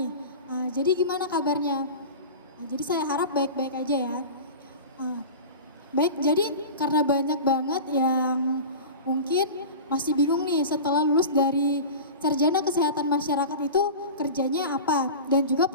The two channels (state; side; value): inverted; both; correlation -0.33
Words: Jadi gimana kabarnya? Jadi saya harap baik-baik aja ya. Baik, jadi karena banyak banget yang mungkin masih bingung nih setelah lulus dari sarjana kesehatan masyarakat itu kerjanya apa dan juga